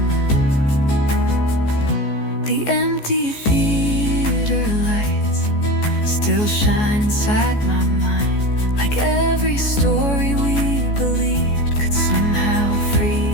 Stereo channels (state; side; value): late; right; 14 ms